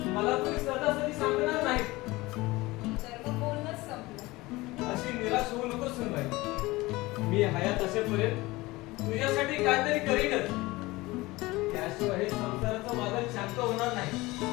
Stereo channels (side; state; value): right; quieter; 20.7 dB